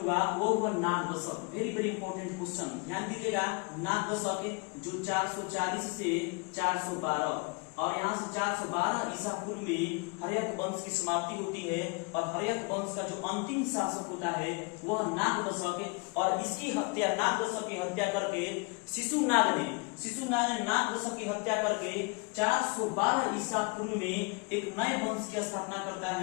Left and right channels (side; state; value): right; quieter; 31.3 dB